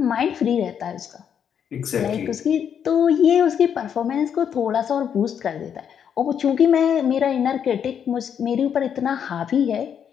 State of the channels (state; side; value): quieter; right; 8.2 dB